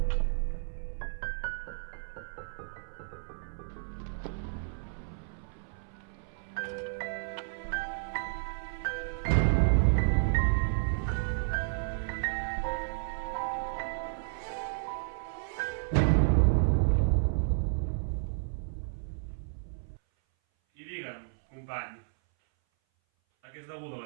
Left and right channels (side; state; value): left; silent; 56 dB below the other